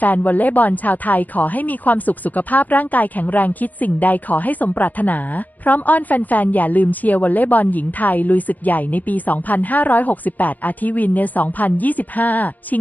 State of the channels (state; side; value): late; right; 0.082 ms